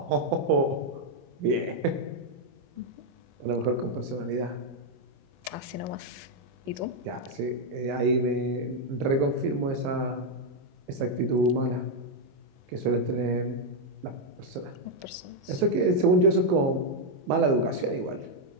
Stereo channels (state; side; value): late; left; 22 ms